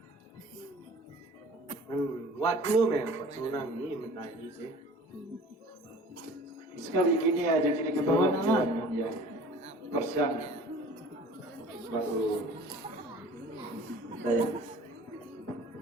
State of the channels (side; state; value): both; normal; correlation 0.46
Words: Wat nu men, wat sunang ni mentari sih. Sekali gini aja kini ke bawah jalan ya. Persiang baru saya.